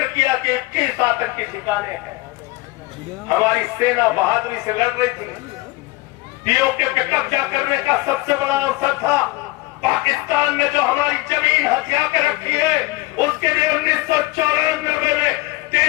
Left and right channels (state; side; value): quieter; right; 20.8 dB